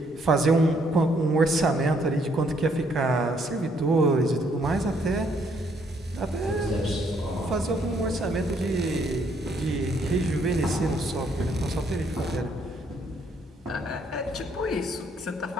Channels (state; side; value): normal; both; correlation 0.69